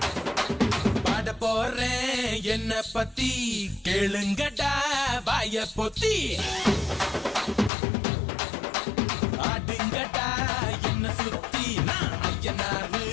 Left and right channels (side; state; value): right; drops out; at 7.7 s